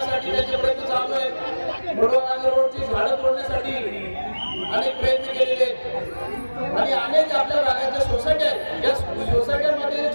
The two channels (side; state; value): both; inverted; correlation -1.00